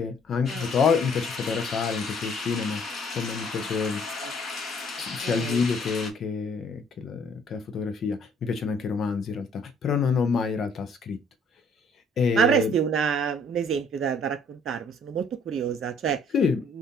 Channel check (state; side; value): normal; both; correlation 0.60